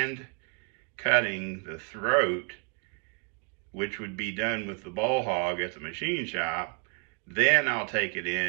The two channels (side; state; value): left; quieter; 38.5 dB